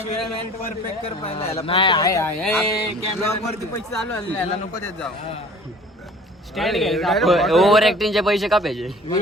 परफेक्ट कर पाहिजे नाही आहे कॅमेरावरती पैसे चालू आले याला नको देत जाऊ स्टँड घ्यायचा ओव्हर ऍक्टिंगचे पैसे का पाहिजे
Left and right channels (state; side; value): normal; both; correlation 0.48